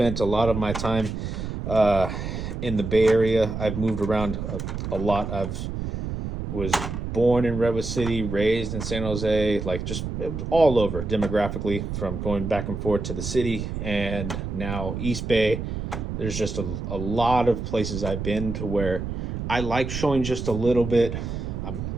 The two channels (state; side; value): noise; right; rumble, 5 dB below the sound